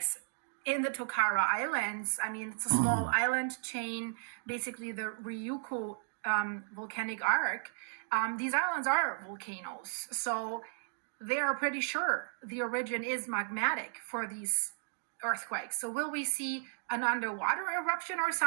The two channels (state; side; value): silent; left; digital silence